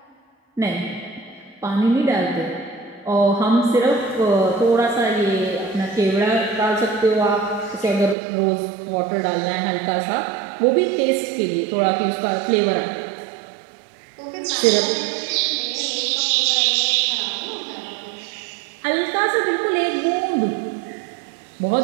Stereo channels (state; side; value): drops out; left; at 8.2 s